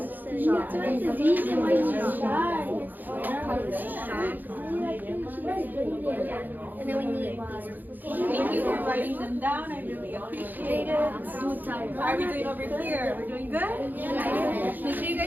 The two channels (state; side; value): late; left; 0.086 ms